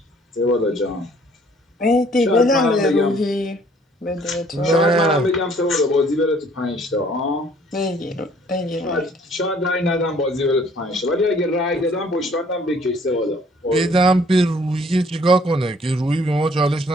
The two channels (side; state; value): both; normal; correlation 0.59